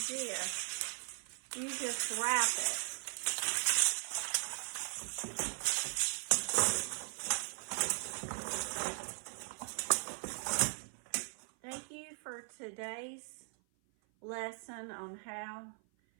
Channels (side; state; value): left; silent; 52 dB below the other